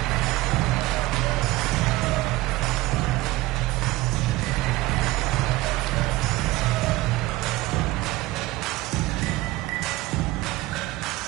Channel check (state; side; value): quieter; left; 18.7 dB